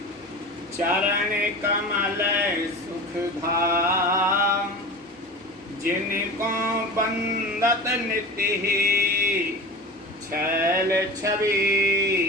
चरण कमल सुख धाम, जिनको बंदत नित्य ही छैल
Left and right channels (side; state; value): both; normal; correlation 0.33